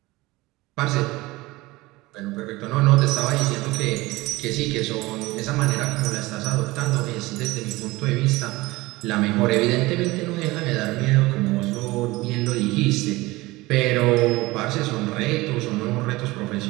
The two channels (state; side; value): quieter; left; 20.7 dB